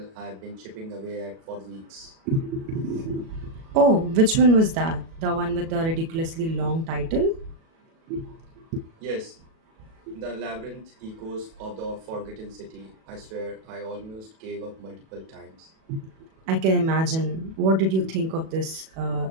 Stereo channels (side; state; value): left; late; 37 ms